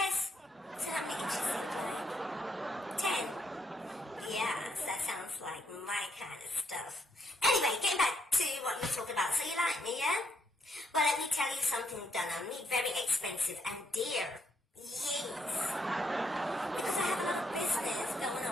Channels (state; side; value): normal; both; correlation 0.74